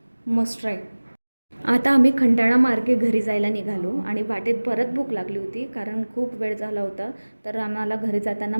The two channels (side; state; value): both; inverted; correlation -1.00